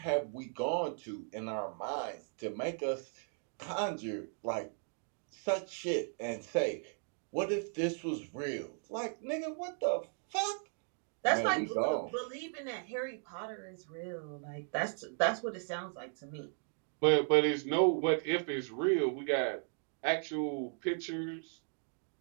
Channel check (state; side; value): silent; left; 53 dB below the other